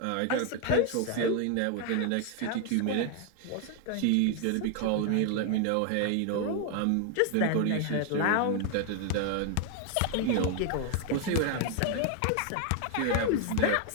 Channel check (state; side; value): different; both; correlation 0.01